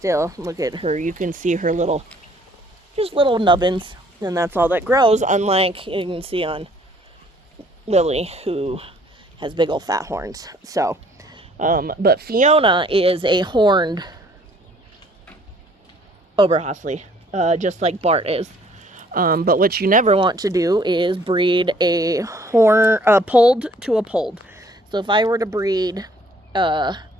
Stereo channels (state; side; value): normal; both; correlation 0.59